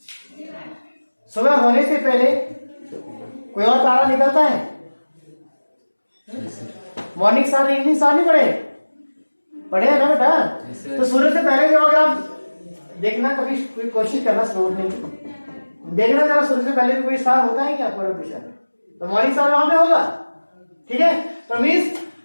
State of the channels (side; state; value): both; inverted; correlation -1.00